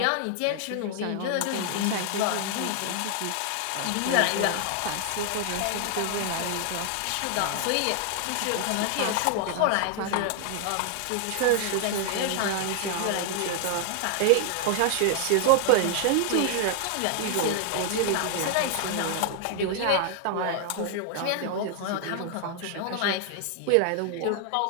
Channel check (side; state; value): both; different; correlation 0.00